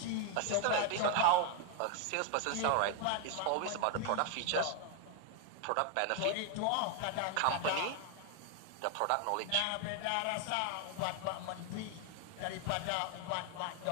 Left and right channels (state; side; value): different; both; correlation 0.00